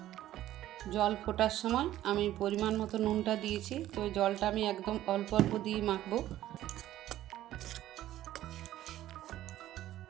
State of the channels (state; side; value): quieter; left; 13.5 dB